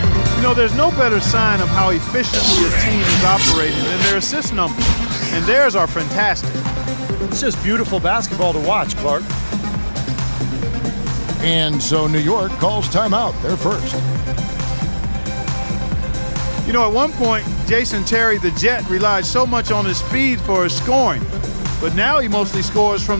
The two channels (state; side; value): inverted; both; correlation -1.00